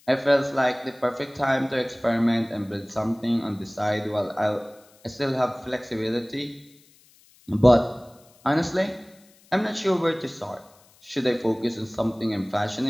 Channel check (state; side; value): noise; left; hiss, 29 dB below the sound